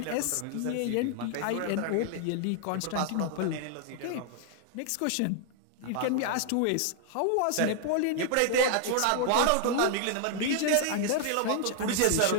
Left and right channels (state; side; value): different; both; correlation 0.00